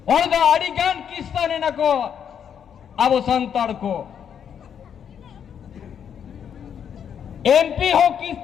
और दा अड़िगान किस्ताने न को अब संताड़ को एमपी हो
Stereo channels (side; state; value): right; quieter; 8.2 dB